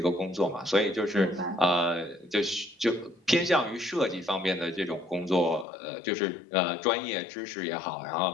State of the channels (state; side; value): drops out; right; at 5.7 s